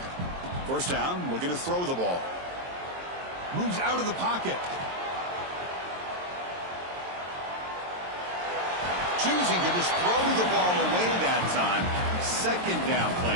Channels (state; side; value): late; left; 22 ms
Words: First down, looking to throw the ball. Moves out of the pocket. Choosing to just throw the ball away that time. Second down